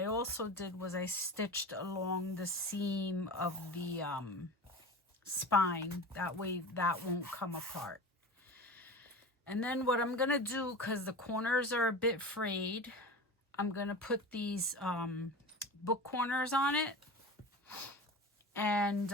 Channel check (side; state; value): both; normal; correlation 0.31